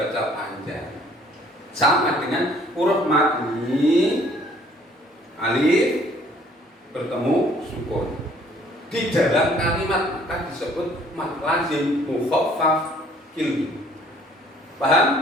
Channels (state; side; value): normal; both; correlation 0.58